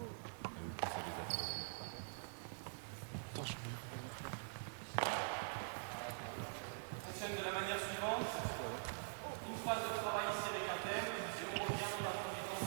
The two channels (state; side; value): silent; left; digital silence